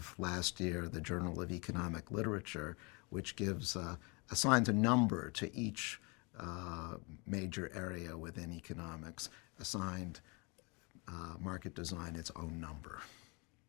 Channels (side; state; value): right; quieter; 30.3 dB